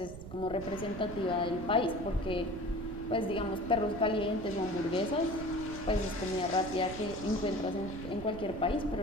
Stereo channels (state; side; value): noise; right; rumble, 12 dB below the sound